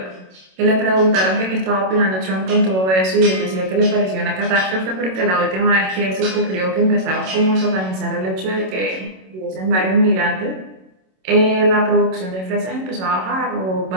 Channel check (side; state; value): left; late; 27 ms